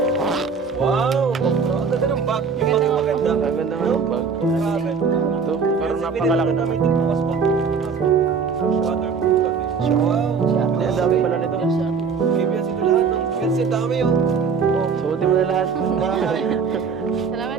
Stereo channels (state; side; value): quieter; left; 5.6 dB